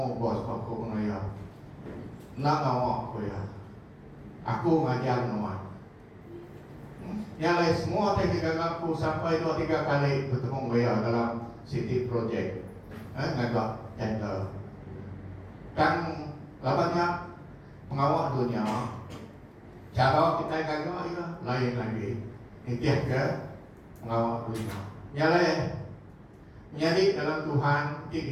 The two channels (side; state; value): both; identical; correlation 1.00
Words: bos aku pengaya. Nak ngawak aku ya. Aku ngajar nuan. Yang lain semua teknik aku sampai 2-3 kali bertemu dia dalam city project. Ngagak tender. Kan labannya pengawal dunia. Cara kita gagak ya lain lagi. Intiah ke pengawal dunia. Yang lain menjadi dalam Tuhan